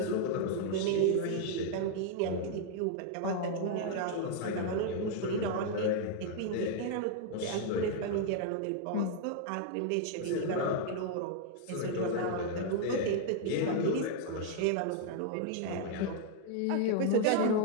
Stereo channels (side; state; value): both; different; correlation 0.00